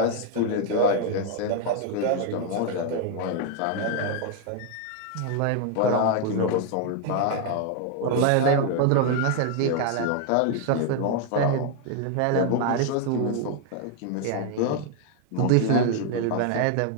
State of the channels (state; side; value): different; both; correlation 0.00